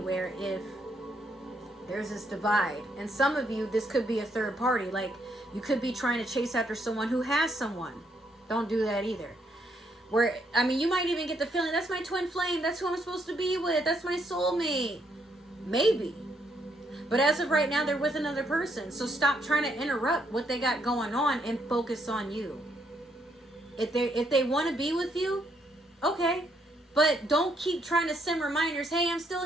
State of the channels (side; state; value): both; normal; correlation 0.74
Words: if there's this divide. And some of you, this could be a third party. Like, you could be trying to chase after someone who has someone. Don't do that either. Where, I mean, you might even get the feeling, that's my twin flame, that's who I'm supposed to be with, that's my soulmate. Maybe. But as of right now, they're with another person. So stop trying to interrupt what they got going on and focus on you. If they want to be with you, okay. But don't keep trying to send reminders, hey, I'm